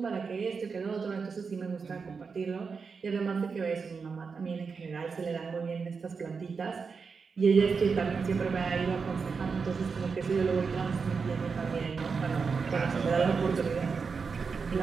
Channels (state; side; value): quieter; left; 5.2 dB